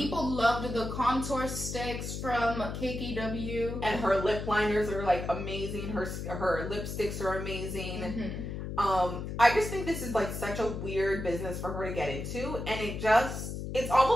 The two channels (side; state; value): left; noise; hum, 6 dB below the sound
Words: loved the contour sticks from KKW. And her lip liners are like amazing. Her lipsticks are amazing. Mm-hmm. I just think this is like such a weird business for her to get into. And it's